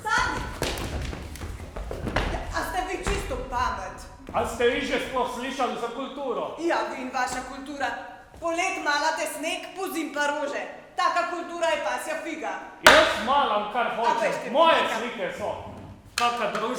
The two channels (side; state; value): both; identical; correlation 1.00